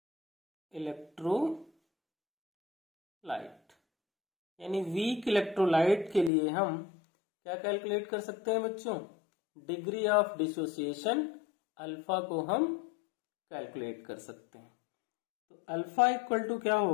electrolyte यानी वीक इलेक्ट्रोलाइट के लिए हम क्या कैलकुलेट कर सकते हैं बच्चों? डिग्री ऑफ डिसोसिएशन अल्फा को हम कैलकुलेट कर सकते हैं। तो अल्फा इक्वल टू क्या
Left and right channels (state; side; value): drops out; right; at 6.3 s